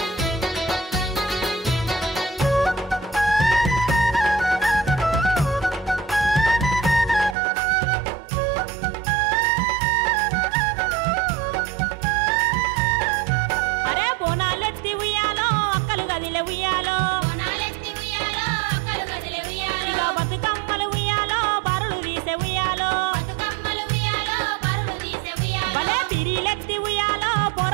అరే బోనాలెత్తి ఉయ్యాలో అక్కలు గదిలే ఉయ్యాలో బోనాలెత్తి ఉయ్యాలో అక్కలు గదిలే ఉయ్యాలో ఇక బతుకమ్మలు ఉయ్యాలో బరులు తీసే ఉయ్యాలో బతుకమ్మలు ఉయ్యాలో పరులు తీసే ఉయ్యాలో భలే పిరీలెత్తి ఉయ్యాలో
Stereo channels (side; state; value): left; drops out; at 7.4 s